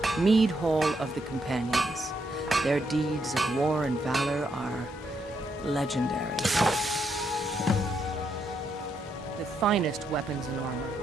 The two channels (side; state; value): both; normal; correlation 0.78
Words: Mead Hall of the Companions. Their deeds of war and valor are legendary. The finest weapons and armor.